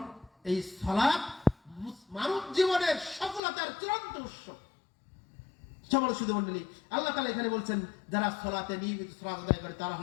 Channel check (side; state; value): right; drops out; at 3.4 s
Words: এই সালাত মানব জীবনের সফলতার চূড়ান্ত উৎস। সকল শুধু মণ্ডলী, আল্লাহ তাআলা এখানে বলছেন যারা সালাতে নিয়মিত সালাত আদায় করে তারা